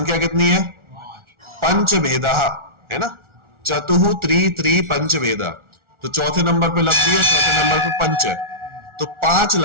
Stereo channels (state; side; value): late; left; 1.4 ms